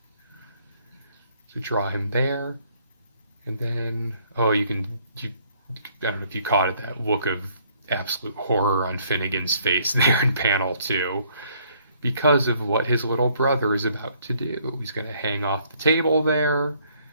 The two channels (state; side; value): inverted; both; correlation -0.64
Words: So draw him there. And then, I don't know if you caught it, that look of absolute horror on Finnegan's face there in panel 2, because of what his little brother is about to do. He's going to hang off the table there,